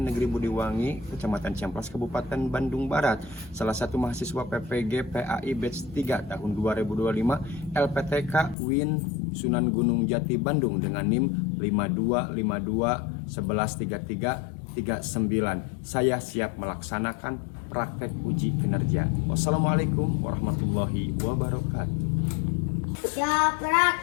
Negeri Budiwangi, Kecamatan Ciamplas, Kabupaten Bandung Barat. Salah satu mahasiswa PPG PAI Batch 3 tahun 2025 LPTK Win Sunan Gunung Jati Bandung dengan NIM 5252113339. Saya siap melaksanakan praktek uji kinerja. Wassalamualaikum warahmatullahi wabarakatuh. Siap,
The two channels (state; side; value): drops out; right; at 8.6 s